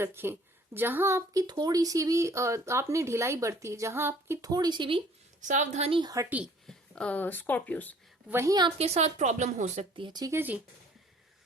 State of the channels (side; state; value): both; normal; correlation 0.55